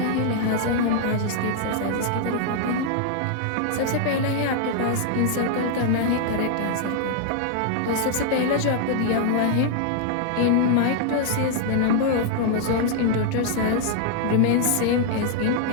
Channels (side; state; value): both; different; correlation 0.00